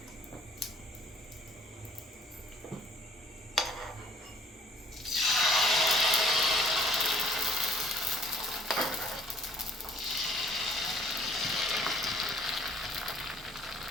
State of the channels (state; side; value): normal; both; correlation 0.57